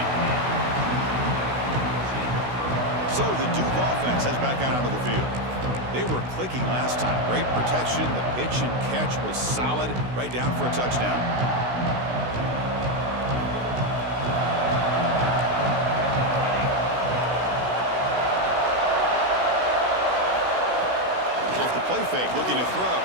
So the Duke offense heads back out onto the field. They were clicking last time. Great protection. The pitch and catch was solid. Right down for a touchdown. Off the play fake, looking to throw.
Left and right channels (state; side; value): late; left; 16 ms